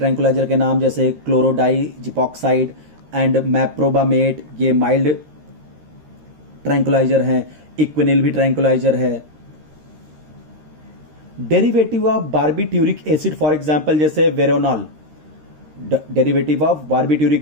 के नाम जैसे क्लोरोडाइजिपॉक्साइड एंड मेप्रोबामेट, ये माइल्ड ट्रैंकुलाइजर हैं। इक्वेनिल भी ट्रैंकुलाइजर है। Derivative of barbituric acid for example जैसे Veronal. Derivative of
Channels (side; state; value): left; late; 13 ms